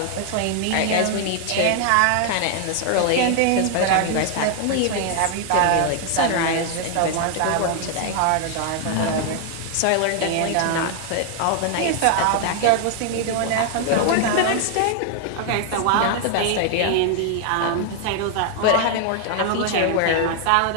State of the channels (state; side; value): different; both; correlation 0.00